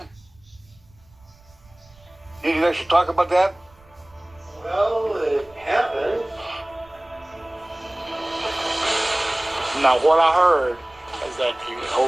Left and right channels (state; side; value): noise; right; rumble, 28 dB below the sound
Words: You guys should talk about that? Well, it happened. Now, what I heard is that he